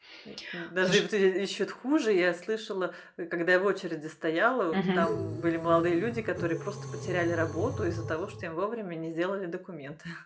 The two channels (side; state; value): both; identical; correlation 1.00